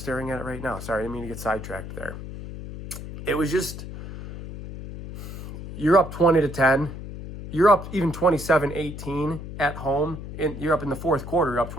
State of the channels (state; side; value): noise; left; hum, 10 dB below the sound